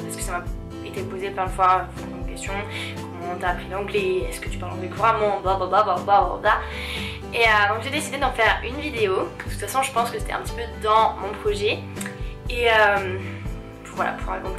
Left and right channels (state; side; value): identical; both; correlation 1.00